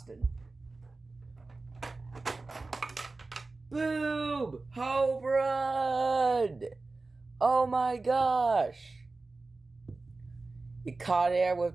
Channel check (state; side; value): quieter; left; 3.5 dB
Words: Boom! Home run! Oh my gosh! He caught air